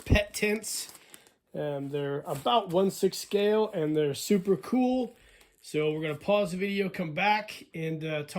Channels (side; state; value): both; identical; correlation 1.00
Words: tents. They're about 1/6 scale and they're super cool. So we're going to pause the video, come back, and